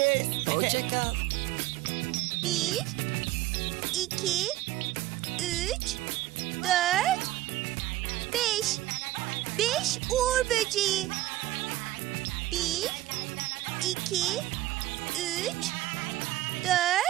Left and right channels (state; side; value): quieter; left; 15.8 dB